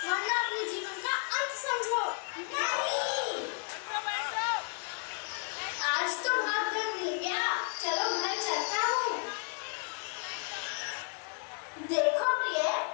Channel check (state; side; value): quieter; right; 38.3 dB